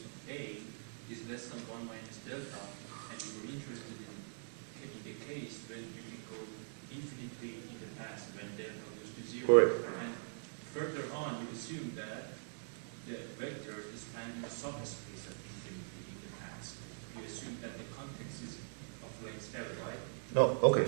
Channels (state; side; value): silent; left; 50 dB below the other